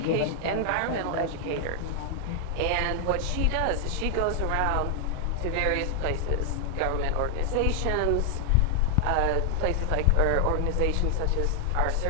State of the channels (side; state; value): both; different; correlation 0.00